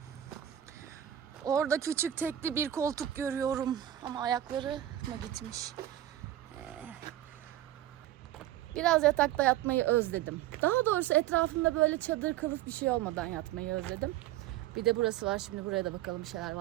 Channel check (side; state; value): left; quieter; 12.8 dB